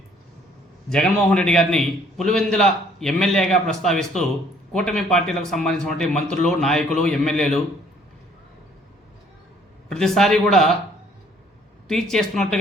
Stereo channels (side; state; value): both; normal; correlation 0.61